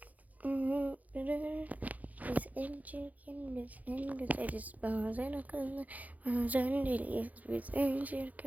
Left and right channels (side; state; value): left; late; 0.077 ms